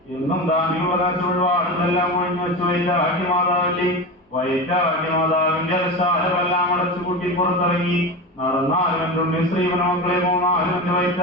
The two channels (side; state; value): both; normal; correlation 0.24